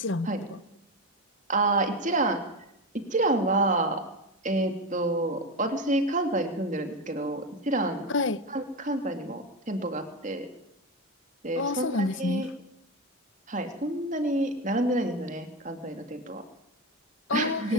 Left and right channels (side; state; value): both; normal; correlation 0.18